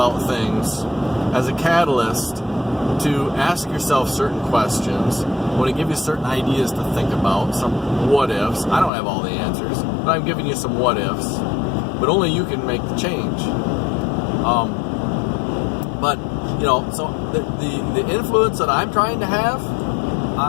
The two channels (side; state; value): right; drops out; at 8.9 s